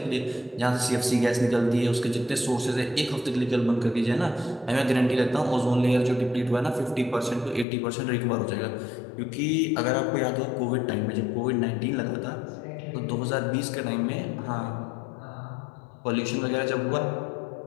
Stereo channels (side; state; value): right; drops out; at 7.7 s